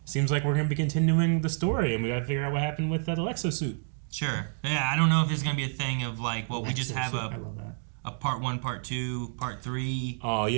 Seems like we're gonna be continuing the story, and we gotta figure out what happened with that Alexo suit. Sure. Yeah, I don't know if there's gonna be a thing of like, well, we just have I love that. a part 1, part 2, part 3. Oh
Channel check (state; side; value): silent; left; digital silence